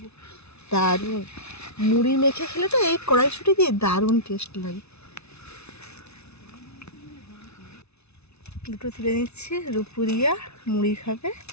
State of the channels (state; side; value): late; right; 0.80 ms